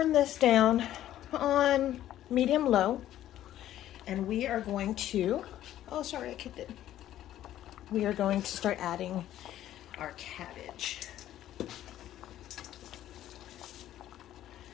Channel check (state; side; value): quieter; right; 12.6 dB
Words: this down on medium-low, and we are going to, oh, sorry, I kicked it. We are going to start adding our cabbage.